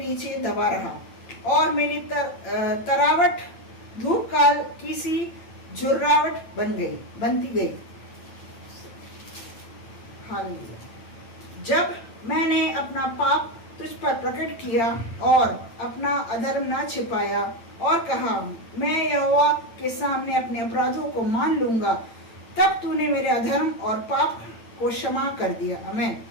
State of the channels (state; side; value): late; right; 8.8 ms